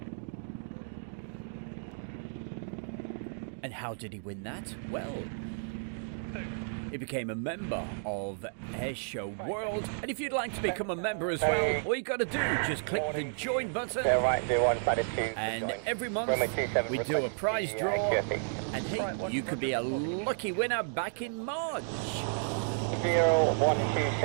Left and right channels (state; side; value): silent; left; digital silence